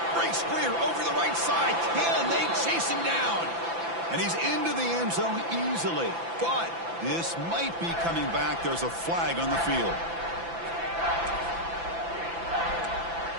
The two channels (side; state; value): left; late; 5.9 ms